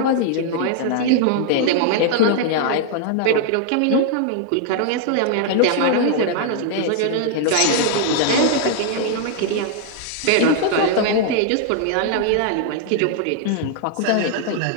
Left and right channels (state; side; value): different; both; correlation 0.00